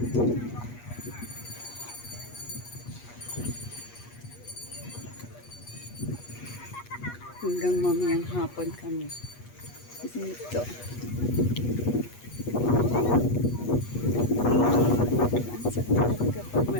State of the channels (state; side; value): late; right; 8.3 ms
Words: Hanggang mamayang hapon kami. Dito. Ang sarap talaga pag